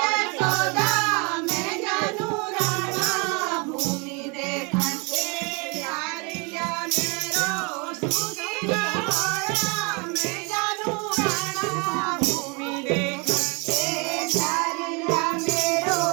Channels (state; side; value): quieter; left; 31.2 dB